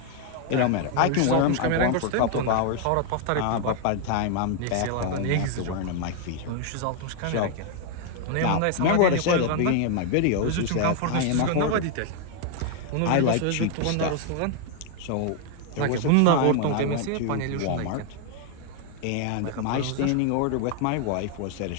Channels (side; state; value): both; different; correlation 0.00